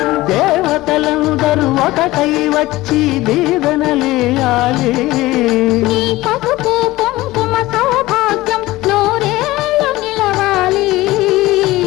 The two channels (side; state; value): right; quieter; 18.2 dB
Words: దేవతలందరూ ఒకటై వచ్చి దీవెనలియాలి నీ పసుపు కుంకుమ సౌభాగ్యం నూరేళ్ళు నిలవాలి